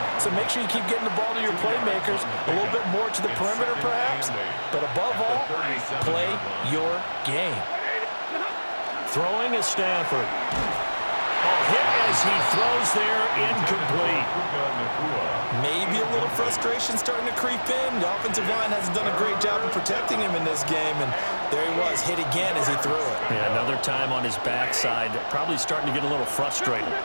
So make sure you keep getting the ball to your playmakers, a little bit more to the perimeter perhaps. But above all, play your game. Throwing is Stafford. A hit as he throws there, incomplete. Maybe a little frustration starting to creep in. The offensive line hasn't done a great job of protecting him in this game, and there he was, hit again as he threw it. Yeah, another time on his backside, probably starting to get a little frustrated.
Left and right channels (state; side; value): inverted; both; correlation -1.00